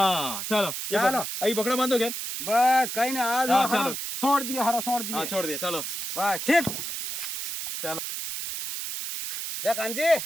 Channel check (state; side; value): noise; right; hiss, 4 dB below the sound